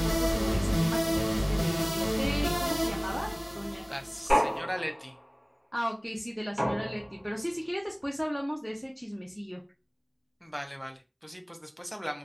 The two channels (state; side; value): identical; both; correlation 1.00